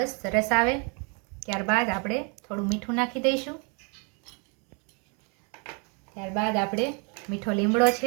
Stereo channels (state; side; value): quieter; left; 35.3 dB